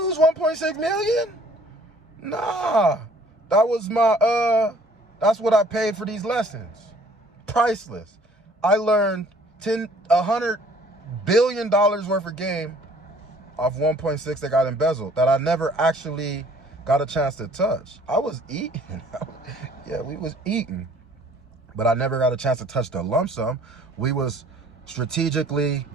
1.6 million. Nah. That was that's what I paid for these lessons. Priceless. I learned $100 billion worth of game off 1.6 that got embezzled that I never actually got a chance to touch. I was eating. Yeah, we was eating. But I never got a chance to touch the lump sum. We was strategically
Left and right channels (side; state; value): both; normal; correlation 0.55